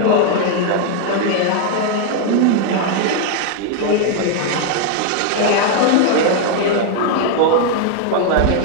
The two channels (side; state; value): both; different; correlation 0.00